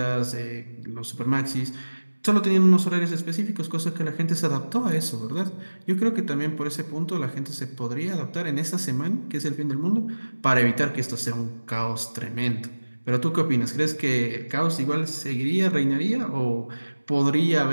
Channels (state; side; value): inverted; both; correlation -1.00